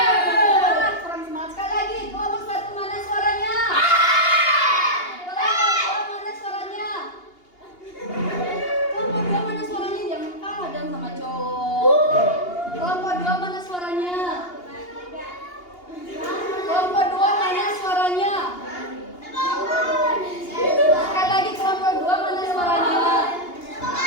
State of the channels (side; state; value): right; late; 2.8 ms